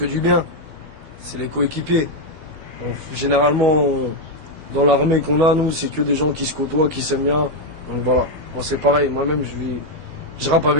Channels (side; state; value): left; late; 13 ms